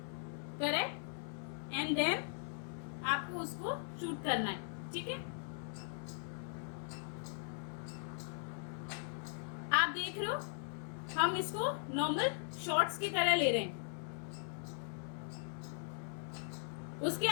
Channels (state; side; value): silent; right; 51 dB below the other